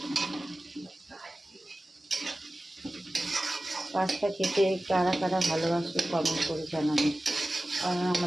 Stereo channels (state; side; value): normal; both; correlation 0.96